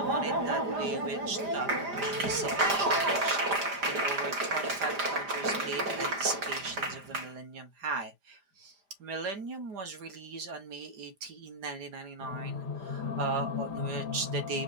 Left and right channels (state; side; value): late; left; 5.0 ms